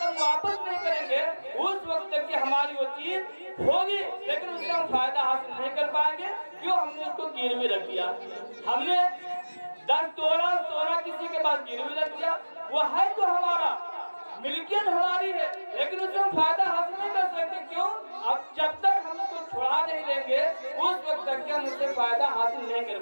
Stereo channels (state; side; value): inverted; both; correlation -1.00